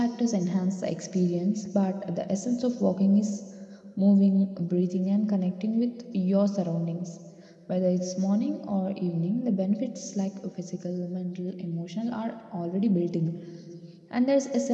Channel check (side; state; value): both; identical; correlation 1.00